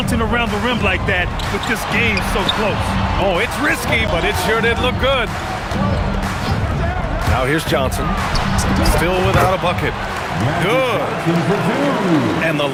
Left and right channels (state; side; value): identical; both; correlation 1.00